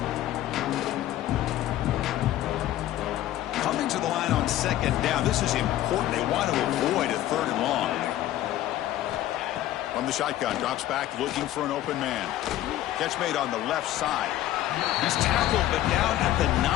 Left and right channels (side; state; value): right; quieter; 13.7 dB